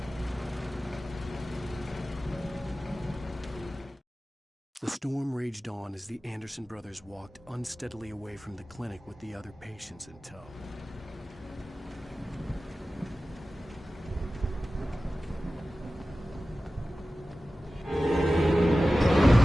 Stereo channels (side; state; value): both; normal; correlation 0.95